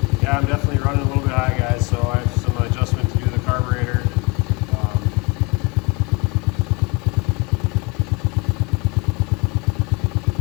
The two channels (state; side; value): quieter; right; 28.0 dB